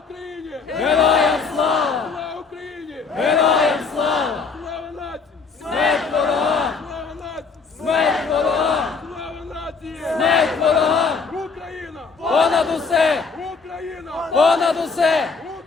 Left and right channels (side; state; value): right; quieter; 4.8 dB